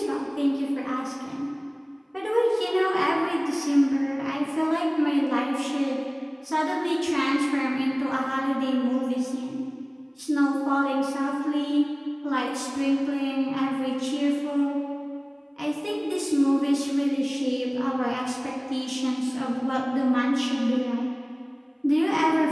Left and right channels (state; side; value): identical; both; correlation 1.00